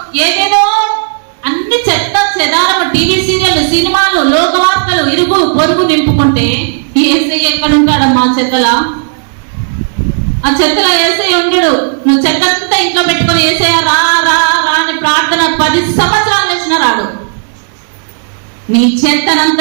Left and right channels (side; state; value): left; silent; digital silence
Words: ఏదేదో అన్ని చెత్త చెదారము, టీవీ సీరియల్, సినిమాలు, లోకవార్తలు, ఇరుగు పొరుగు నింపుకుంటే ఈ యేసయ్య ఎక్కడ ఉంటాడమ్మా? చెత్తలా? ఆ చెత్తలో యేసయ్య ఉండడు. నువ్వు చెత్తంతా ఇంట్లో పెట్టుకొని యేసయ్య రా రా రా అని ప్రార్థన 10 సంవత్సరాలు చేసిన రాడు. నీ